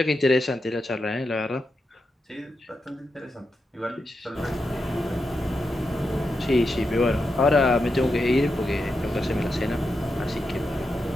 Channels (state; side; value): normal; both; correlation 0.87